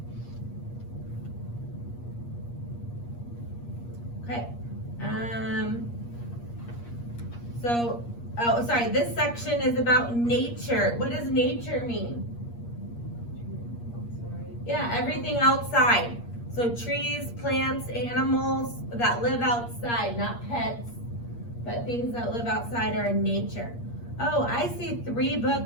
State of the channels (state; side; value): late; right; 8.5 ms